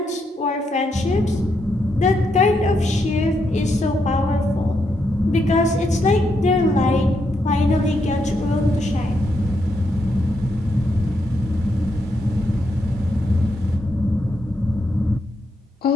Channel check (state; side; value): normal; both; correlation 0.79